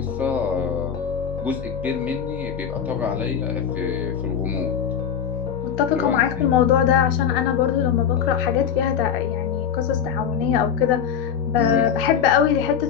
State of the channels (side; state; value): right; quieter; 8.1 dB